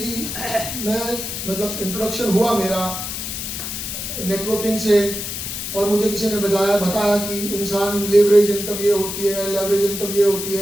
मतलब इंट्रोडक्शन हुआ मेरा नेटवर्किंग से और मुझे किसी ने बताया कि इंसान लेवरेज इनकम ये होती है, लेवरेज इनकम ये होती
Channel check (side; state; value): left; noise; hiss, 5 dB below the sound